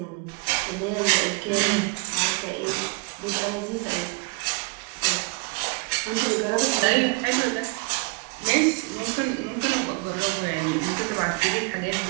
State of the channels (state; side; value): quieter; left; 28.2 dB